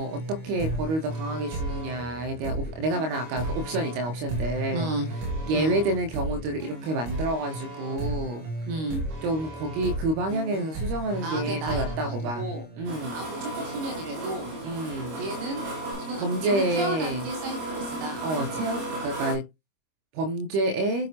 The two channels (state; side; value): late; left; 25 ms